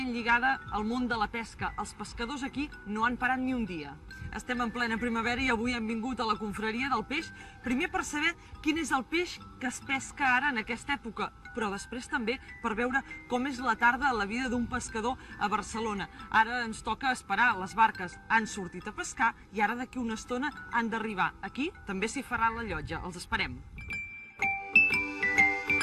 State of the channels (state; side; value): identical; both; correlation 1.00